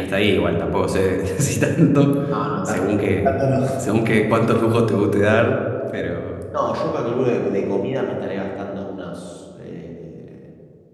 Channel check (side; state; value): both; identical; correlation 1.00